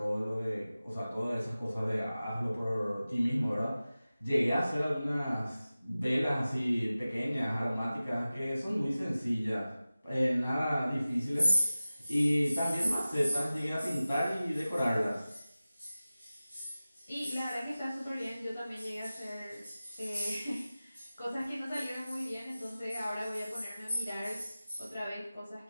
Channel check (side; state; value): both; inverted; correlation -0.96